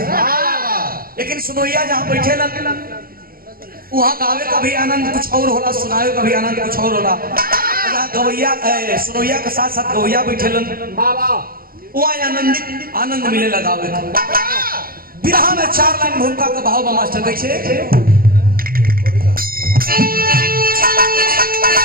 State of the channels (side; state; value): left; late; 0.43 ms